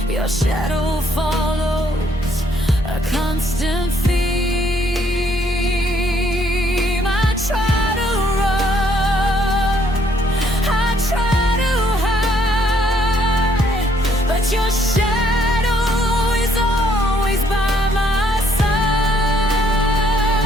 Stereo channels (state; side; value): normal; both; correlation 0.67